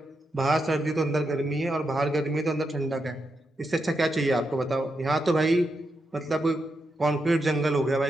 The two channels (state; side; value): normal; both; correlation 0.85